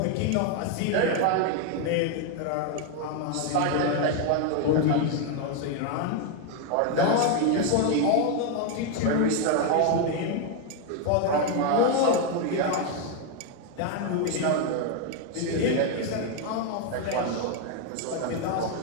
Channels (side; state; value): both; different; correlation 0.01